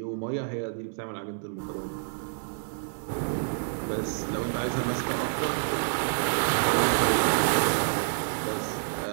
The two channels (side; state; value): left; silent; 59 dB below the other